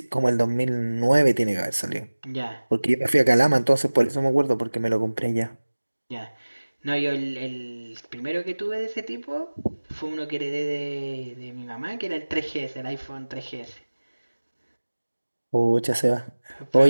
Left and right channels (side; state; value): both; inverted; correlation -1.00